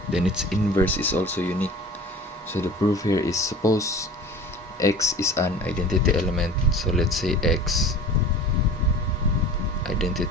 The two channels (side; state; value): both; normal; correlation 0.40